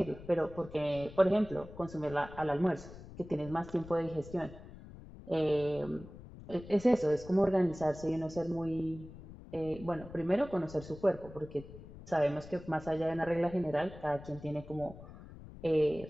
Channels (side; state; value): left; noise; rumble, 16 dB below the sound